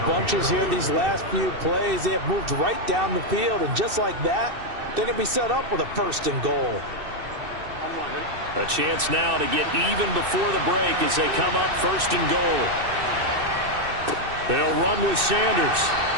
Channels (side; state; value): left; late; 2.6 ms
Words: bunches here these last few plays. They have moved right down the field, and just like that, they're going to be set up with a 1st and goal. A chance now to get even before the break as they come up 1st and goal. They'll run with Sanders.